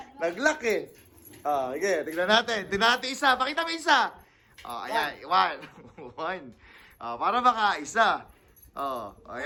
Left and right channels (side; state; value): both; identical; correlation 1.00